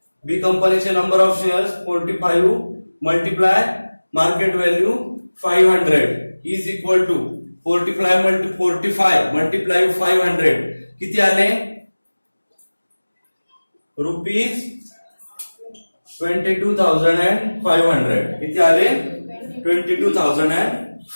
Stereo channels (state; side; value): inverted; both; correlation -1.00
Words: बी कंपनीचे number of shares 45 multiply market value 500 is equal to 45 multiply 500 किती आले रुपीज 22,500. किती आले